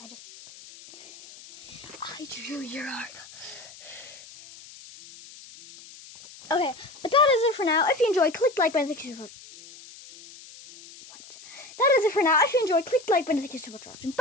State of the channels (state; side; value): noise; left; hiss, 19 dB below the sound